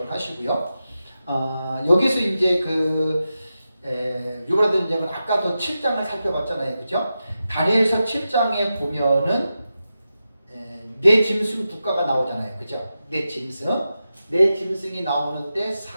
하시고요. 여기서 이제 유브라데 전쟁은 아까도 7장을 살펴봤잖아요, 그죠? 다니엘서 7장에 보면은 네 짐승 국가가 나오잖아요, 그죠? 네 짐승이 나오는데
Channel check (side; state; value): both; inverted; correlation -0.91